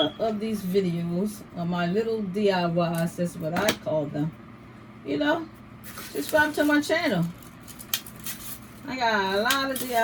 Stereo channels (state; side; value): identical; both; correlation 1.00